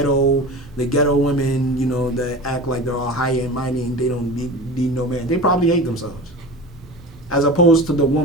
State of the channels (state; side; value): normal; both; correlation 0.33